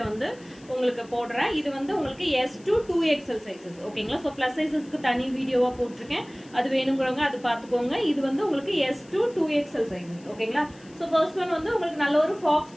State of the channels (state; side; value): noise; left; hiss, 26 dB below the sound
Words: வந்து உங்களுக்கு போடுறேன். இது வந்து உங்களுக்கு S2 2XL சைஸஸ் ஓகேங்களா. ஸோ ப்ளஸ் சைஸஸ்க்கு தனி வீடியோவாக போட்டிருக்கேன், அது வேணுங்கிறவங்க அது பார்த்துக்கோங்க. இது வந்து உங்களுக்கு S2 2XL சைஸஸ் ஓகேங்களா. ஸோ ஃபர்ஸ்ட் ஒன் வந்து உங்களுக்கு நல்ல ஒரு ஃபாக்ஸ்